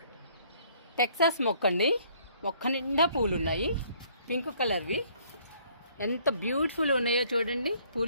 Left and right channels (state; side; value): inverted; both; correlation -0.61